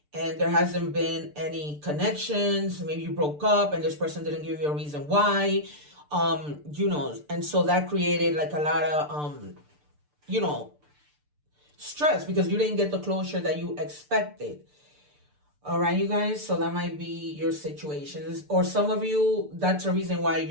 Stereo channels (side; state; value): left; late; 6.8 ms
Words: And there hasn't been any connections. Maybe you broke up and this person didn't give you a reason why. You know, and so that created like a lot of, you know, stress because you didn't get the closure that you expected. All right, you guys, so that might be your situations. Or some of you, that's the reason why